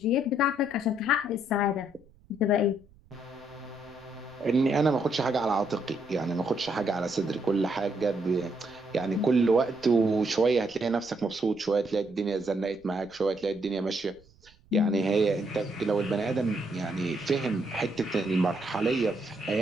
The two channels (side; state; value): right; noise; rumble, 28 dB below the sound